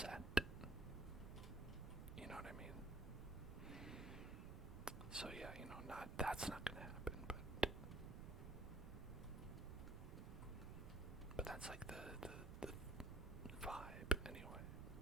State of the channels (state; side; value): noise; right; rumble, 6 dB below the sound